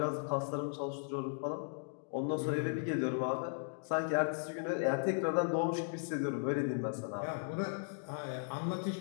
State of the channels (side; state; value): right; silent; digital silence